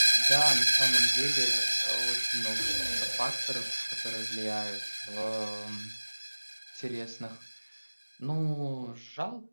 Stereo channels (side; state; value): both; inverted; correlation -1.00